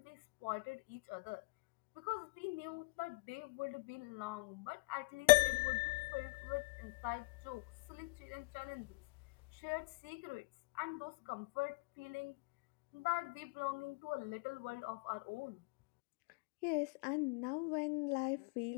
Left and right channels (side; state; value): right; quieter; 29.7 dB